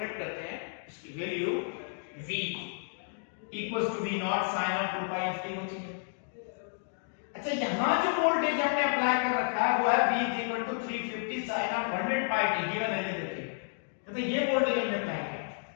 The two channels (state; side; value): silent; right; digital silence